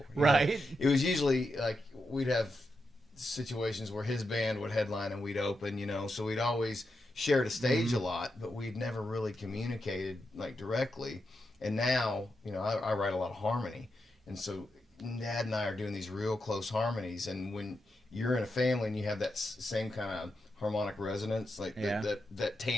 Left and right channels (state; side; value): normal; both; correlation 0.86